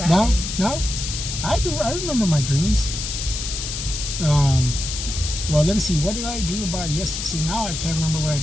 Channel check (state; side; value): noise; left; hiss, 5 dB below the sound